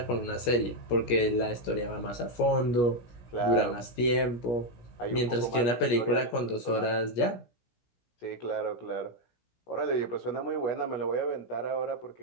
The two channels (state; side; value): late; right; 17 ms